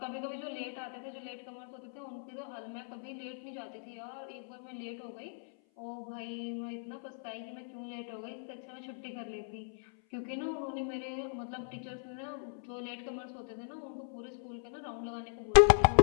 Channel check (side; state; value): right; silent; 53 dB below the other